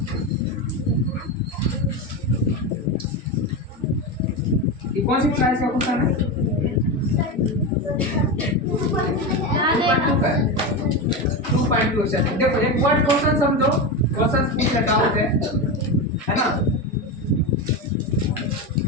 ये कौन सी क्लास का क्वेश्चन है? 2.2 का है। 2.2 से देखो एक वर्ड क्वेश्चन समझो, क्वेश्चन पूछ रखा होते है ना।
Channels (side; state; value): both; normal; correlation 0.17